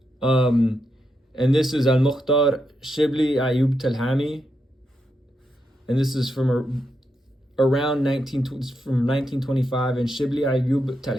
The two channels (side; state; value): both; normal; correlation 0.83